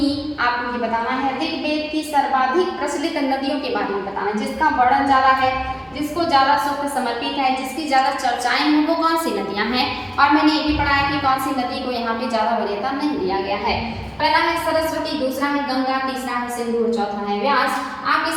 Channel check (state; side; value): identical; both; correlation 1.00